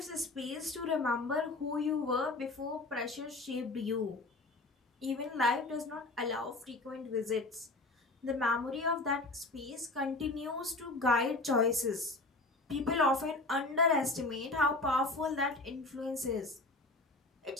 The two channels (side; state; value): right; quieter; 3.1 dB